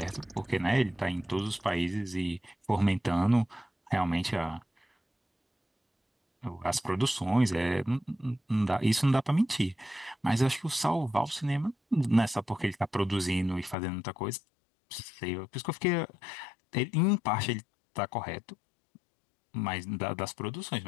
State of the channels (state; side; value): drops out; right; at 13.8 s